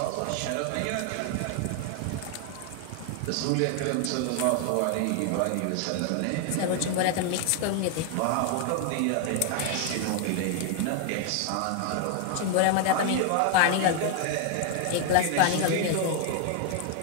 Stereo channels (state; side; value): different; both; correlation 0.00